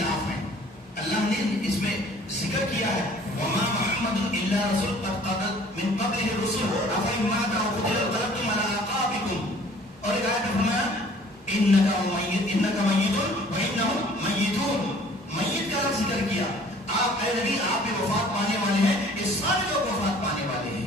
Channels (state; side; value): normal; both; correlation 0.53